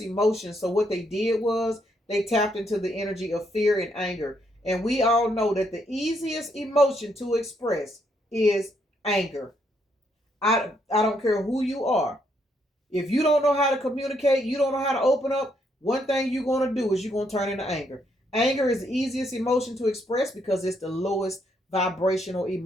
emotions. So what they did was they tapped into the energy of fear and anger. And we all know that the easiest emotion to express is anger. I don't care who you are. If you don't know how to communicate, you don't know how to open up, one thing you're going to do is you're going to turn into anger. Anger is the easiest emotion to express because it's the lowest vibrational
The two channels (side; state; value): both; normal; correlation 0.74